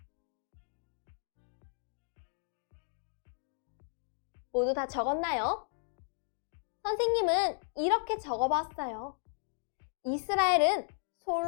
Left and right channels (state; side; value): silent; right; digital silence